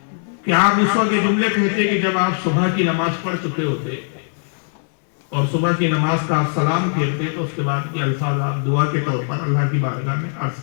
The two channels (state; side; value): silent; right; digital silence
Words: کہ آپ اس وقت یہ جملے کہتے کہ جب آپ صبح کی نماز پڑھ چکے ہوتے اور صبح کی نماز کا آپ سلام پھیرتے تو اس کے بعد یہ الفاظ آپ دعا کے طور پر اللہ کی بارگاہ میں عرض